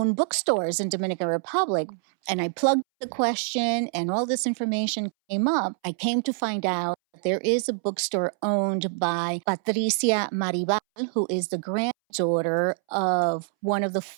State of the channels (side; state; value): left; silent; 61 dB below the other